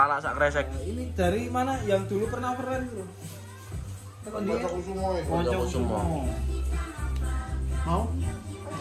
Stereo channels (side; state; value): both; identical; correlation 1.00